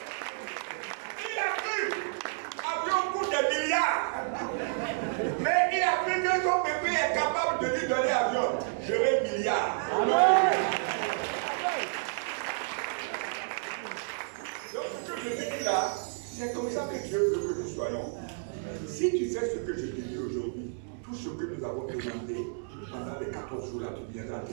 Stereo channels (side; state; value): left; silent; digital silence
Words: a cru. Avion coûte des milliards. Mais il a C'est comme ça que Dieu veut que nous soyons. Si tu fais ce que je te dis aujourd'hui, tout ce que nous avons demandé pendant les 14 jours là, tu viendras